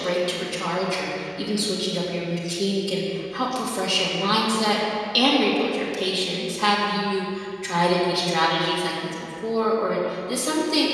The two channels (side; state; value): both; identical; correlation 1.00